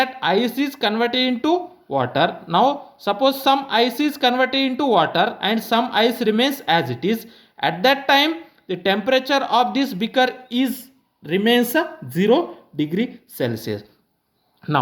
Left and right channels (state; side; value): identical; both; correlation 1.00